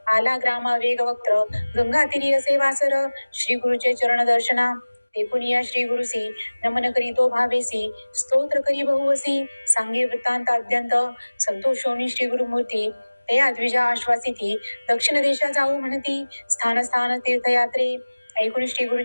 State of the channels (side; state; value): both; inverted; correlation -1.00